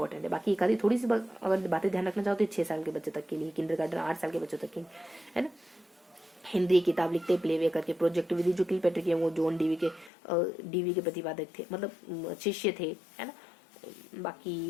है। बाकी एक आधी थोड़ी सी अगर बातें ध्यान रखना चाहो तो 6 साल के बच्चे तक के लिए, किंडरगार्टन 8 साल के बच्चों तक के, है ना। हिंदी किताब लिखते प्लेवे करके। प्रोजेक्ट विधि जो किलपेट्रिक है वो जॉन डीवी के प्रतिपादक थे, मतलब शिष्य थे, है ना।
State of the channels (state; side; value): drops out; right; at 10.1 s